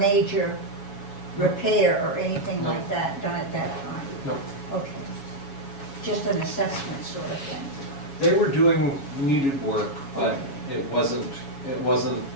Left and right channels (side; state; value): right; late; 7.2 ms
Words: repair or anything No. like that done at that time? No. Okay. Just an assessment sort of thing. They were doing needed work, but it wasn't